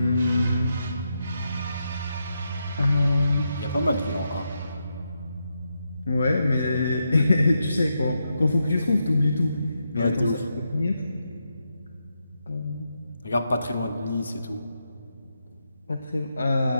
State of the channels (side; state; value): both; inverted; correlation -0.84